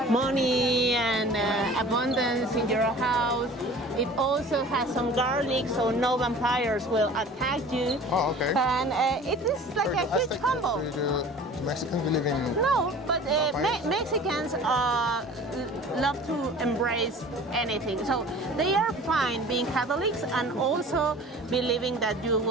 money and abundance in your house. It also has some garlic, so no vampires will attack you. Oh, okay. And it is like a huge combo. Mexicans believe in... No, but Mexicans love to embrace anything. So they are fine being Catholics and also believing that you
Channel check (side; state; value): both; normal; correlation 0.44